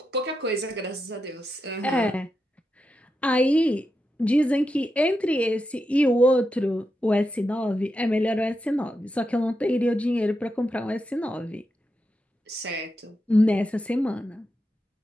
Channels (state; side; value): normal; both; correlation 0.87